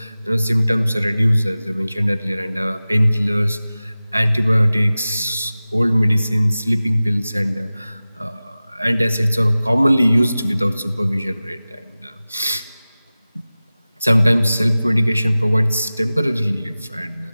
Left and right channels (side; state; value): both; inverted; correlation -0.97